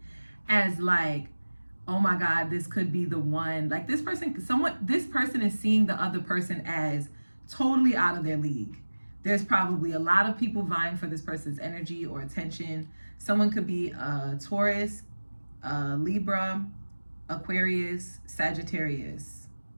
as like, oh my God, this could be the one. Like this person is seeing the other person as totally out of their league. There's probably a lot of people vying for this person's energy or attention. Someone could be a Taurus, Libra, Aquarius, Sagittarius,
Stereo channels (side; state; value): both; inverted; correlation -1.00